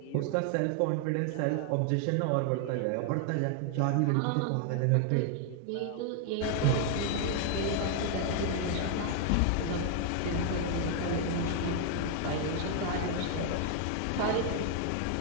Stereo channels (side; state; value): both; different; correlation 0.00